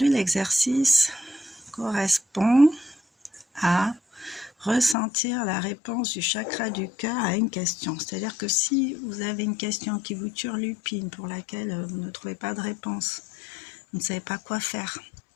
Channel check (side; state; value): right; drops out; at 5.0 s